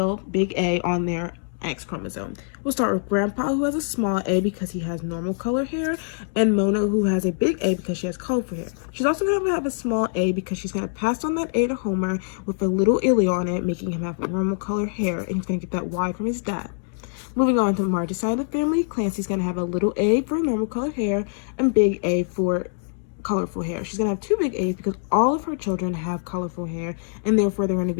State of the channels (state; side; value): silent; right; digital silence